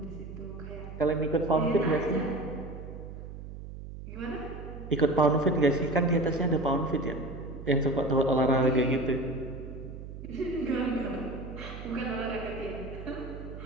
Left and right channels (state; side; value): noise; right; hum, 11 dB below the sound